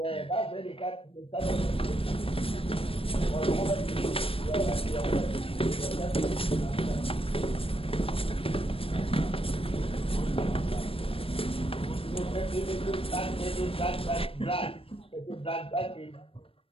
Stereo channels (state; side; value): late; right; 0.27 ms